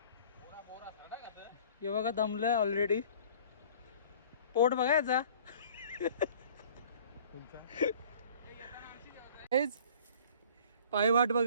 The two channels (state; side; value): inverted; both; correlation -0.50